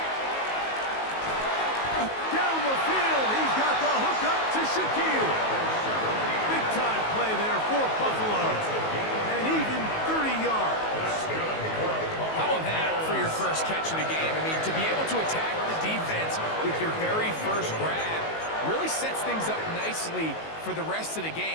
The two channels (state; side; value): late; right; 19 ms